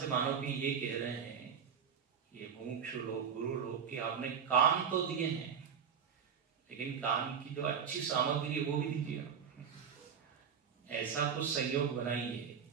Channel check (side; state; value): left; quieter; 7.2 dB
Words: मानो कि ये कह रहे हैं, ये मुमुक्षु लोग, गुरु लोग, कि आपने कान तो दिए हैं, लेकिन कान की जो अच्छी सामग्री है वो भी दीजिए। ऐसा कुछ संयोग बनाइए,